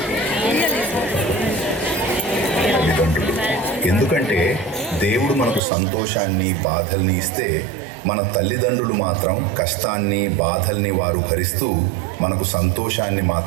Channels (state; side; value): drops out; left; at 5.6 s